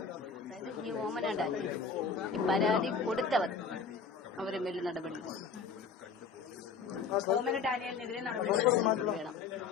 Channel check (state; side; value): quieter; right; 5.5 dB